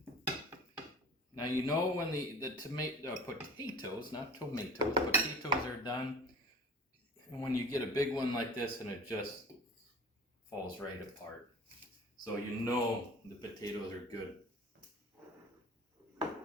Now you know when the potatoes, not tomatoes, potatoes are done. And when you get a big one like this and it just falls right apart. So you know the potatoes are good.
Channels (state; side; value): normal; both; correlation 0.42